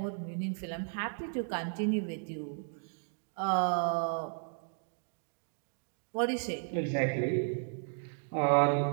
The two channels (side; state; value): left; silent; 55 dB below the other